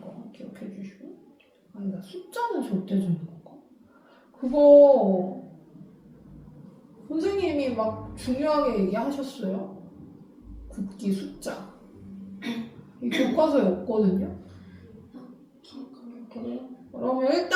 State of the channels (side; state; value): both; identical; correlation 1.00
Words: 거 기억해 주시고. 아니다. 숫자는 절대적인 건가? 그거 선생님이 막 중요하게 얘기하셨어요. 굵기 숫자. 이 교과서에 없거든요. 그러면